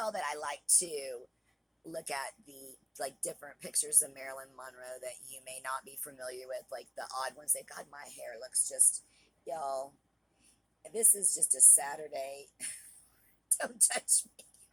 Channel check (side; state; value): both; identical; correlation 1.00